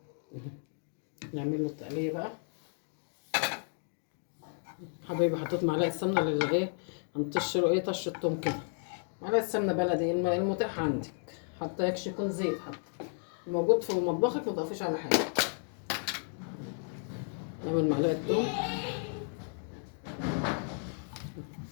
نعمل له التقليه بقى. حبايبي حطيت معلقه سمنه اللي ايه، هنطش له ايه طشه توم كده. معلقه سمنه بلدي المتاح عندك، حتى يكش يكون زيت، حتى موجود في مطبخك ما تضيفيش على حاجه. نعمل معلقه توم.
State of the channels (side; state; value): right; silent; 56 dB below the other